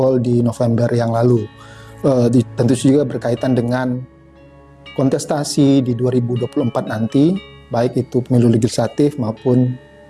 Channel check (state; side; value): identical; both; correlation 1.00